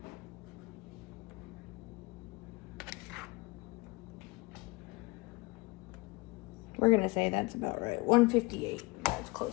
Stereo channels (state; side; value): quieter; right; 24.8 dB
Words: We're gonna say that's about right. 158. That's